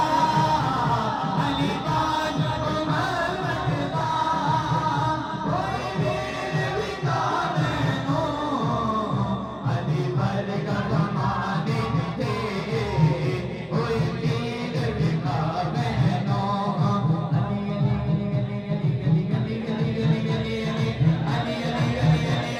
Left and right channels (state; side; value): identical; both; correlation 1.00